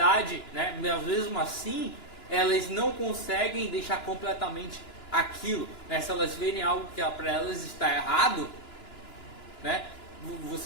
né? Mas mesmo assim, elas não conseguem deixar completamente aquilo, né? Se elas verem algo que para elas está errado, né?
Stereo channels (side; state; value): right; late; 2.9 ms